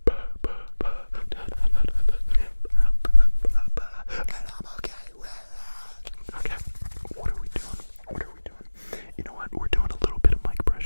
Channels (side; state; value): both; inverted; correlation -1.00